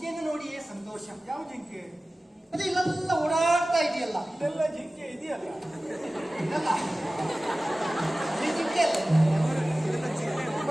ನೋಡಿಯೇ ಸಂತೋಷ ಯಾವ ಜಿಂಕೆ ಅದು ಇಲ್ಲೆಲ್ಲ ಓಡಾಡ್ತಾ ಇದೆಯಲ್ಲ ಇದೆಲ್ಲ ಜಿಂಕೆ ಇದೆಯಲ್ಲ ಇದಲ್ಲ ಈ ಜಿಂಕೆ ಅಲ್ಲ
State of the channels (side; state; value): both; normal; correlation 0.97